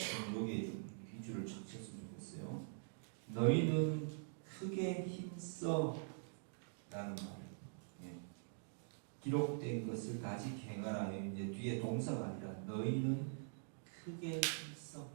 여기에 좀 위주를 chắc 쳤으면 좋겠어요. 너희는 크게 힘써 라는 말. 기록된 것을 아직 행하라. 이제 뒤에 동사가 아니라 너희는 크게 힘써.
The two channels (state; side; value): silent; left; digital silence